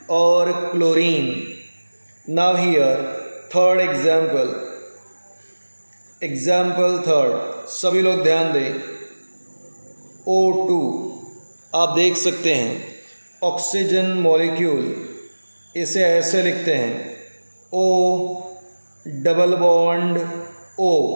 और chlorine. Now here third example, example third, सभी लोग ध्यान दें। O2 आप देख सकते हैं, ऑक्सीजन मॉलिक्यूल, इसे ऐसे लिखते हैं O double bond O,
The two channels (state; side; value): inverted; both; correlation -1.00